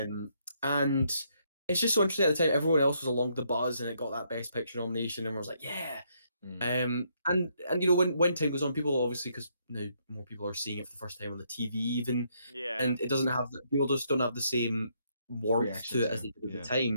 And it's just so interesting at the time. Everyone else was along the buzz, and it got that Best Picture nomination, and I was like, yeah. Mm. And when time goes on, people obviously, because now more people are seeing it for the first time on the TV even, Yeah, and it doesn't have people just don't have the same warmth Reaction to it to as it. they did at the Yeah.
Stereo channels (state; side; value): inverted; both; correlation -0.73